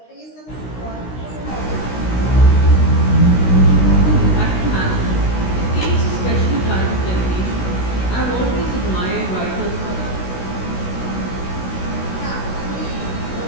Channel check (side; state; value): right; late; 16 ms